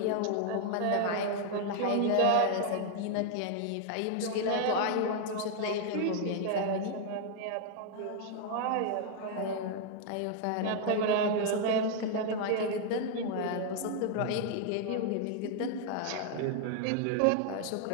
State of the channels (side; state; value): both; different; correlation 0.00